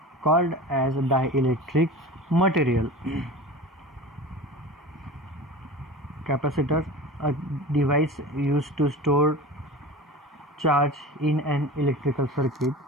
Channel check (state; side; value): normal; both; correlation 0.34